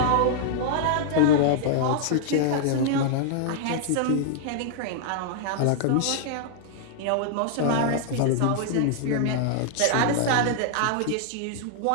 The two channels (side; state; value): both; different; correlation -0.01